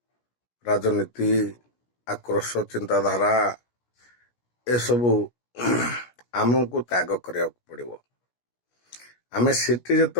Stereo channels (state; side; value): late; right; 17 ms